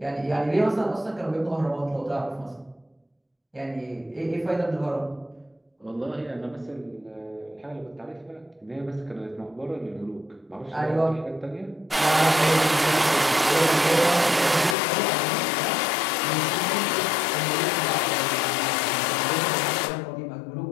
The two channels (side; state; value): right; drops out; at 14.8 s